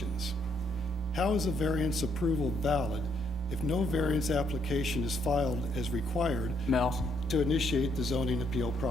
how is a variance approval valid if no variance application is filed as required to initiate the zoning appeal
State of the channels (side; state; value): both; normal; correlation 0.72